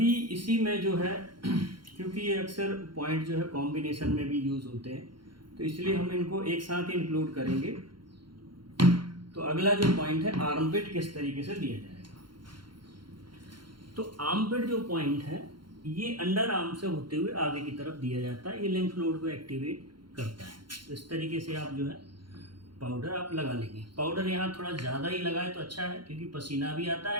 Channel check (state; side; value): late; left; 0.72 ms